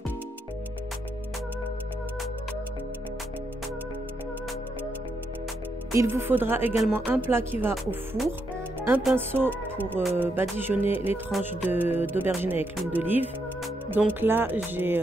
Il vous faudra également un plat qui va au four, un pinceau pour badigeonner les tranches d'aubergine avec l'huile d'olive. Donc là, j'ai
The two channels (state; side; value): normal; both; correlation 0.80